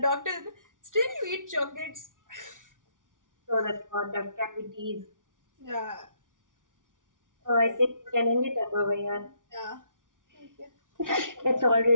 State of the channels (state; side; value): late; left; 0.88 ms